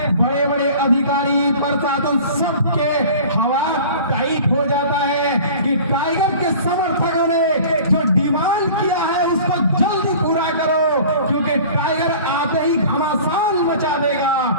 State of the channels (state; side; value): inverted; both; correlation -0.43